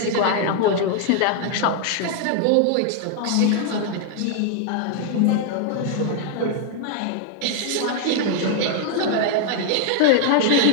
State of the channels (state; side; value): different; both; correlation 0.00